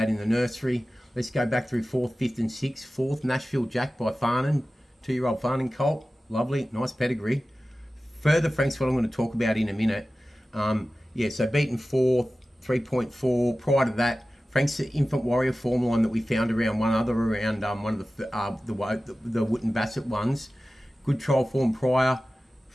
in the nursery. Let's go back through 4th, 5th and 6th. 4th, Nashville Jack by Farnan. 2-year-old Farnan colt. Lovely, nice pedigree. Further Frank's what I'm going to talk about in a minute. Yeah, so beaten 4th, 3.4. Prior to that, Frank's the Infant Warrior form line that we found around one of the Wootton Bassett ones. Good trial form prior.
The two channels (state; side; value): normal; both; correlation 0.95